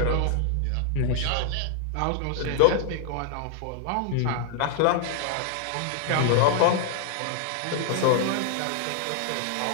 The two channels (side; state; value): both; different; correlation -0.01